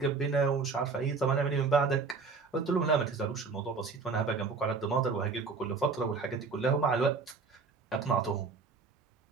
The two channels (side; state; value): left; quieter; 4.7 dB